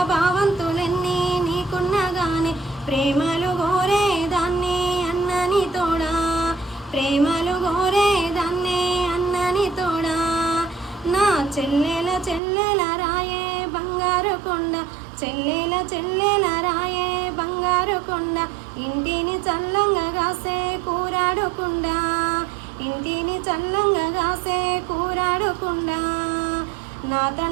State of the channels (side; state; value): left; drops out; at 12.4 s